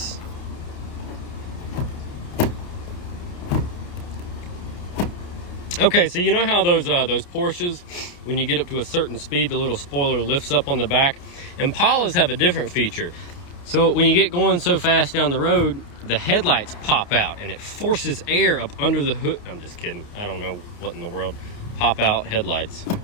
Okay, so you know how those Porsches, when you get up to a certain speed, the little spoiler lifts up on the back? Impalas have a different feature. So when you get going so fast down the road, the headlights pop out and it forces air up under the hood. I'm just kidding. I don't know what in the world. Pop out headlights.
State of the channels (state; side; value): late; right; 29 ms